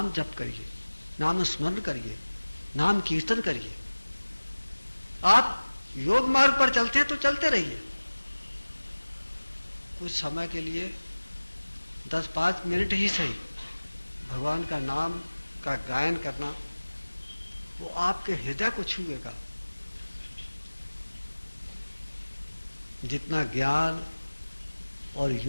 जप करिए, नाम स्मरण करिए, नाम कीर्तन करिए। आप योग मार्ग पर चलते हैं तो चलते रहिए। कुछ समय के लिए 10-5 मिनट ही सही भगवान का नाम का गायन करना, वो आपके हृदय को छुएगा। जितना ज्ञान और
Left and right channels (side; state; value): both; inverted; correlation -1.00